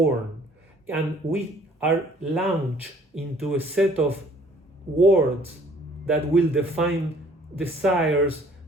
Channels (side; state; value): both; normal; correlation 0.57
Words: And we are launched into a set of words that will define desires,